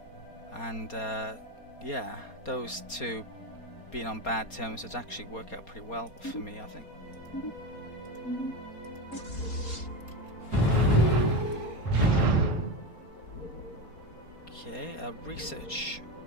and yeah, those two being on bad terms would actually work out pretty well for me, I think. Okay, research.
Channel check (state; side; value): late; right; 4.2 ms